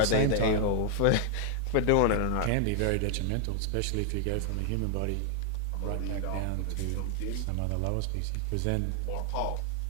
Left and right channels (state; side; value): different; both; correlation 0.00